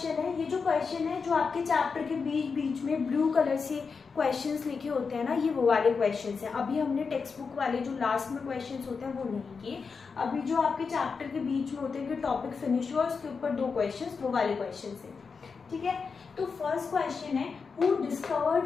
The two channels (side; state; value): right; quieter; 5.2 dB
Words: है, ये जो क्वेश्चन है जो आपके चैप्टर के बीच बीच में ब्लू कलर से क्वेश्चंस लिखे होते हैं ना, ये वो वाले क्वेश्चंस हैं। अभी हमने टेक्स्ट बुक वाले जो लास्ट में क्वेश्चंस होते हैं वो नहीं किए। अभी जो आपके चैप्टर के बीच में होते हैं कि टॉपिक फिनिश हुआ उसके ऊपर 2 क्वेश्चंस, वो वाले क्वेश्चंस हैं। ठीक है, तो फर्स्ट क्वेश्चन है, who